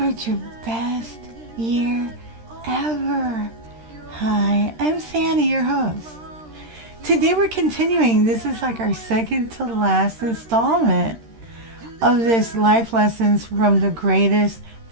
your best year ever. Hi, I'm Sandy, your host. Today we're continuing. This is like our second to last installment of this Life Lessons from the Greatest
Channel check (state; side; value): late; left; 13 ms